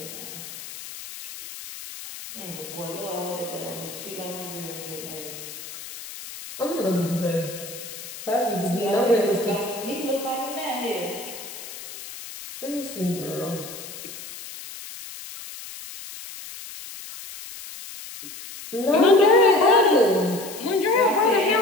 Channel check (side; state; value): left; noise; hiss, 12 dB below the sound